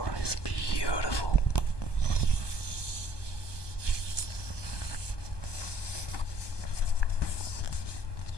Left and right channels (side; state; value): right; late; 1.2 ms